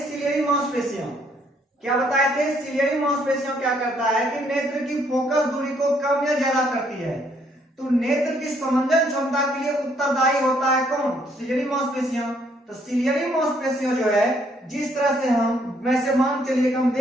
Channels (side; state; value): both; normal; correlation 0.68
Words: मांसपेशियां, क्या बताए थे, सिलियरी मांसपेशियां क्या करता है कि नेत्र की फोकस दूरी को कम या ज्यादा करती है। तो नेत्र की समंजन क्षमता के लिए उत्तरदायी होता है कौन, सिलियरी मांसपेशियां। तो सिलियरी मांसपेशियां जो है, जिस तरह से हम वैसे मान चलिए कि हम